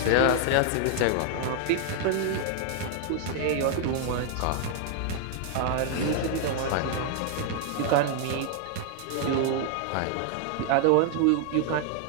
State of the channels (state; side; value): different; both; correlation 0.00